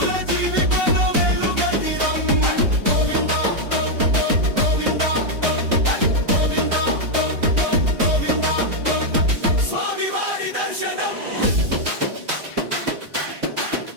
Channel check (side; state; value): left; late; 3.8 ms